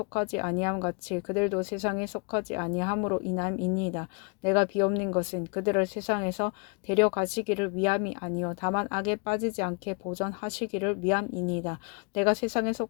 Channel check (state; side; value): quieter; right; 33.1 dB